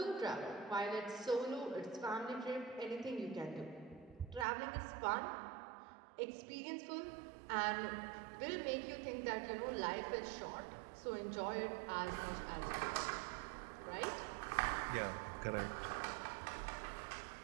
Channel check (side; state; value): left; drops out; at 4.5 s